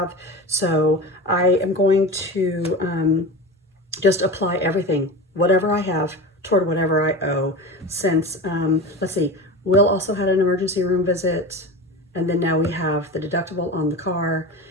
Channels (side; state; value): both; normal; correlation 0.28